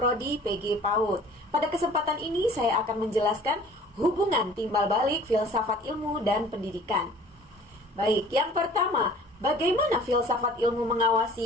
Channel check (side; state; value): both; normal; correlation 0.49